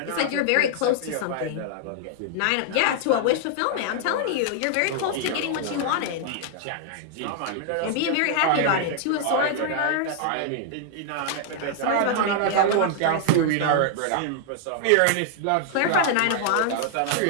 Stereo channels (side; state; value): both; different; correlation 0.00